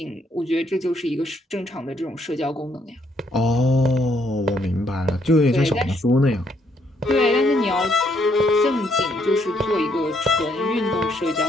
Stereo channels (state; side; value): normal; both; correlation 0.71